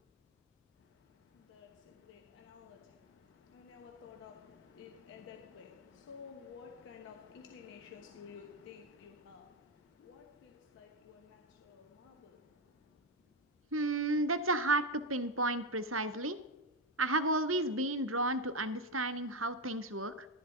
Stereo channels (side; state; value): both; normal; correlation 0.09